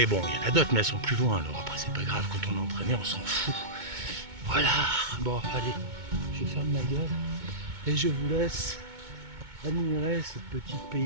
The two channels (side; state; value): left; late; 2.2 ms